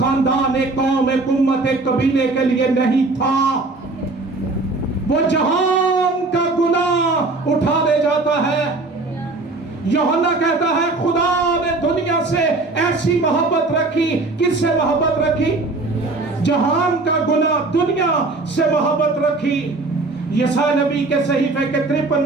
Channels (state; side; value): quieter; left; 3.3 dB